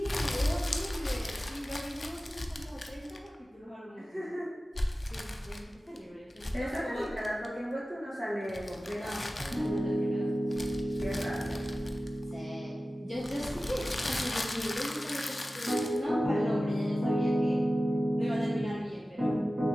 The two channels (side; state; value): both; normal; correlation 0.96